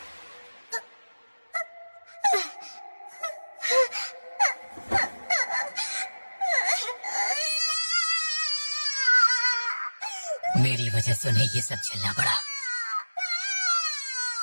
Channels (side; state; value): both; inverted; correlation -1.00